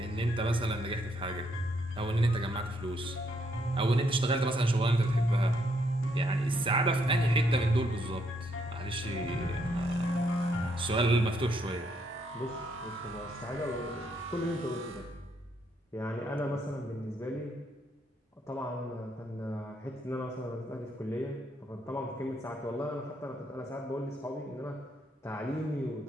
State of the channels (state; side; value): normal; both; correlation 0.73